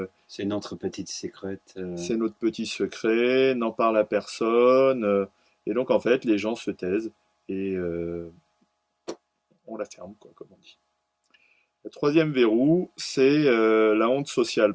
C'est notre petite secrète. c'est notre petit secret, n'en parle à personne. Et donc, en fait, les gens se taisent et on la ferme, quoi, comme on dit. Le troisième verrou, c'est la honte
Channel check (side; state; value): both; identical; correlation 1.00